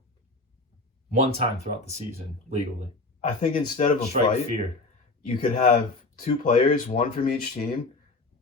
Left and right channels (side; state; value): right; quieter; 3.3 dB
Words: One time throughout the season, legally. I think instead of a fight, fear. You could have two players, one from each team.